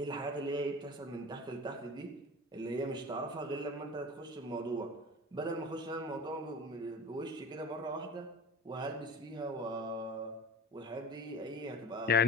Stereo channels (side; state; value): both; normal; correlation 0.35